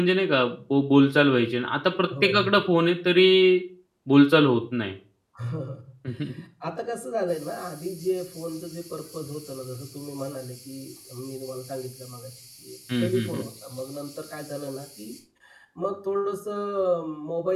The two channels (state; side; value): identical; both; correlation 1.00